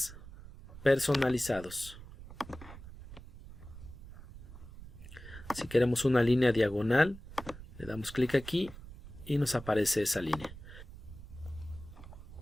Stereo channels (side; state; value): right; noise; rumble, 15 dB below the sound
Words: personalizados. Si queremos una línea diagonal, le damos clic aquí y nos aparece esa línea.